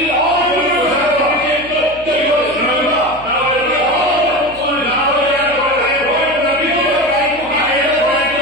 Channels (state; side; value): noise; left; hum, 21 dB below the sound